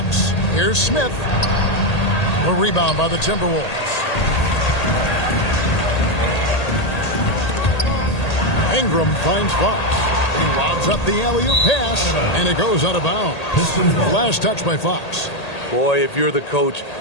Here's Smith. A rebound by the Timberwolves. Ingram finds Fox. He lobs up the alley-oop pass, and it goes out of bounds. Last touch by Fox. Boy, if you're the coach,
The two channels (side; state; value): right; late; 1.8 ms